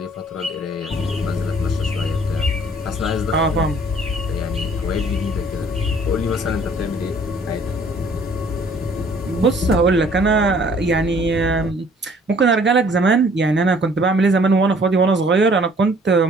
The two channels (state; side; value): normal; both; correlation 0.57